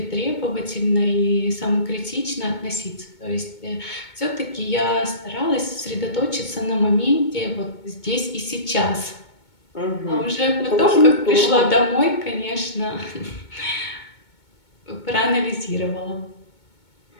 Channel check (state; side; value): late; right; 2.2 ms